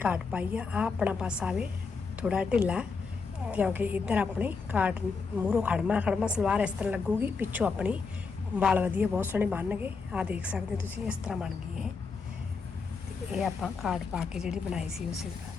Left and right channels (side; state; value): right; quieter; 4.8 dB